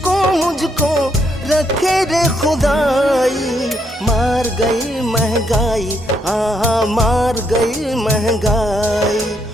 मुझको रखे रे खुदाई। मार गई महंगाई, हाँ हाँ मार गई महंगाई,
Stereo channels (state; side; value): normal; both; correlation 0.75